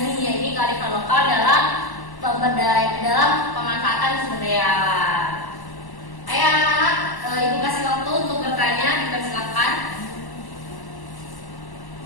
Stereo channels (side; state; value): right; late; 1.1 ms